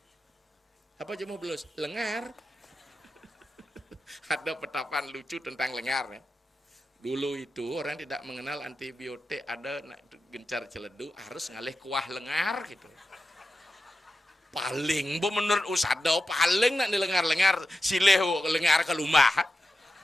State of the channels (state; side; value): normal; both; correlation 0.91